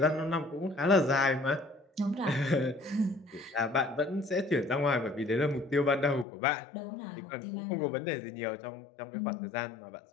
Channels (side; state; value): right; drops out; at 6.2 s